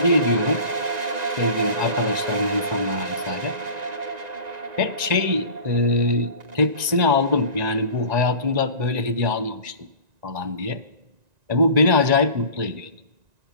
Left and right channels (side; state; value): left; late; 1.9 ms